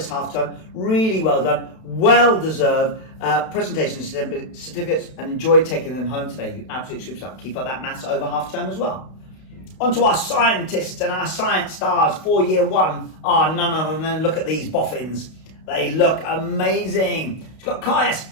half term. Really well done. Well deserved presentation certificates, and enjoy taking them home today. You absolute superstar. Keep up that maths over half term as well. On to our scientists, and our science stars for Year 1 are none other than, look at these boffins. They look amazing. We've got Caius,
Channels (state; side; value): late; right; 32 ms